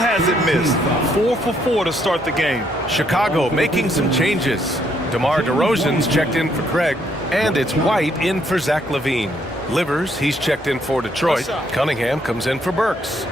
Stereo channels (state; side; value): normal; both; correlation 0.71